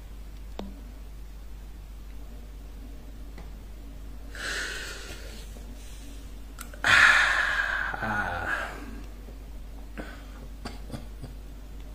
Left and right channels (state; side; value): identical; both; correlation 1.00